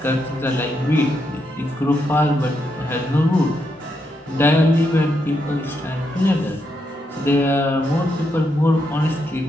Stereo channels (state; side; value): normal; both; correlation 0.81